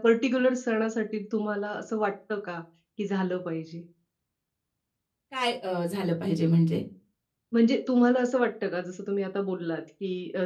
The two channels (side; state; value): both; identical; correlation 1.00